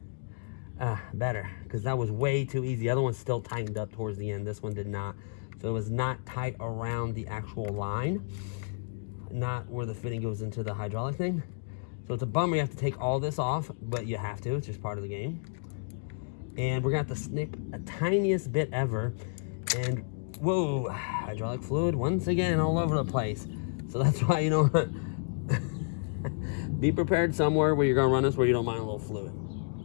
better, because that was way too easy. The other one's still tightened up towards the end. This one did not. So it was not tight around the actual line, not where the fitting goes into the hydraulic thing. So it's a bummer you have to take all this off, but you have to, it's just part of the game. And we're gonna have to snip a tiniest bit ever. And whoa, hydraulic fluid once again all over the place. So that's why, you know what, be prepared somewhere where you're gonna run this where you don't mind a little fluid.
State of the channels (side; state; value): right; silent; digital silence